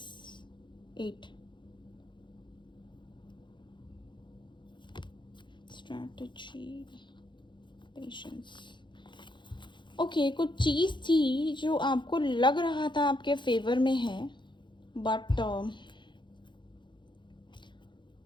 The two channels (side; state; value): right; late; 0.23 ms